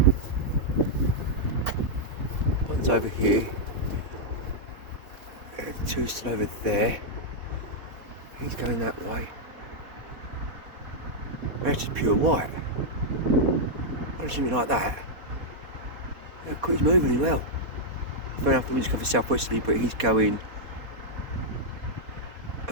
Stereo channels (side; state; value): left; late; 4.1 ms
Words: One's over here. There's 2 still over there. He's going that way. That's just pure white. I don't see anything like that. Yeah, he's moving really well. Fair enough, the wind's coming southwesterly, but he's going